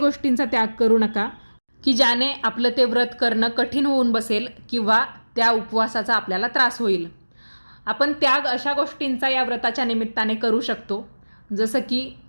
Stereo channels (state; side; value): inverted; both; correlation -1.00